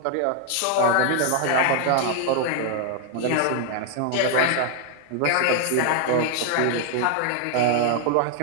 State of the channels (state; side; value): different; both; correlation 0.00